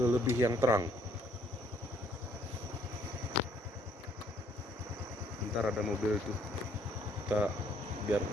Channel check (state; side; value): normal; both; correlation 0.65